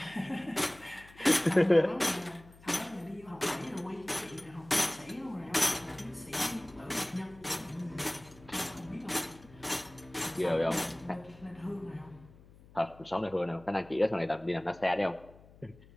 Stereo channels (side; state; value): left; noise; hum, 23 dB below the sound